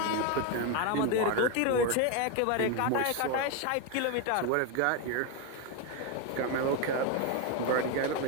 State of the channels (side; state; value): both; different; correlation 0.02